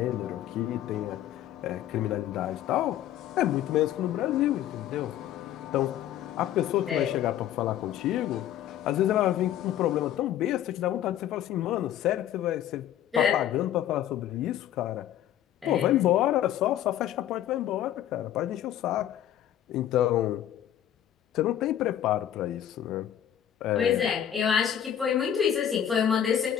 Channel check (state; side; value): quieter; right; 11.0 dB